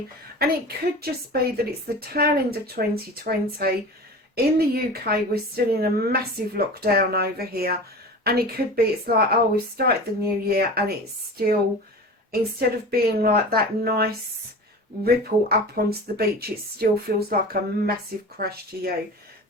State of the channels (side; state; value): both; normal; correlation 0.34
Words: And it could just be that it's the tail end of 2020. In the UK, we're still in a massive lockdown over here. And it could be, it's like, oh, we've started the new year and it's still, instead of being like that nice, ripple up onto the beach, it still feels like a massive crash to you.